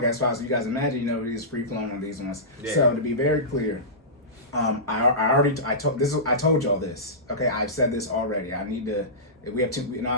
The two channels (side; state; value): both; normal; correlation -0.19